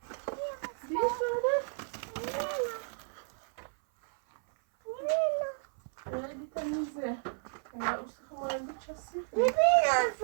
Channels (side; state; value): left; silent; 56 dB below the other